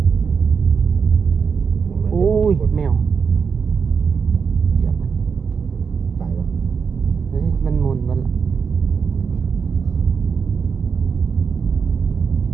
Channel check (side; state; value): left; quieter; 5.9 dB